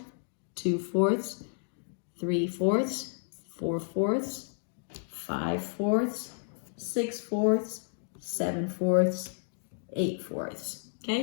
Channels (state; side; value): silent; right; 57 dB below the other